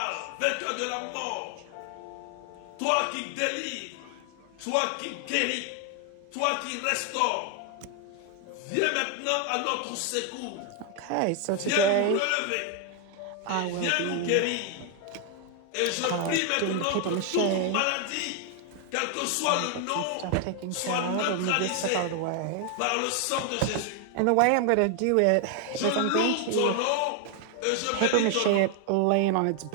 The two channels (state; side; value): different; both; correlation 0.00